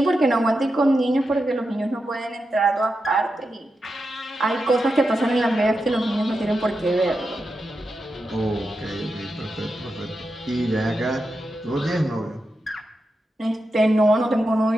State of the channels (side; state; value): both; normal; correlation 0.88